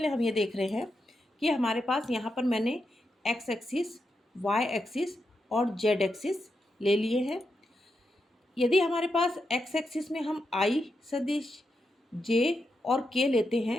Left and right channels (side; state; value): both; normal; correlation 0.85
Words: हम ये देख रहे हैं कि हमारे पास यहाँ पर मैंने एक्स एक्सिस, वाई एक्सिस और जेड एक्सिस ले लिए हैं। यदि हमारे पास एक्स एक्सिस में हम आई सदिश, जे और के लेते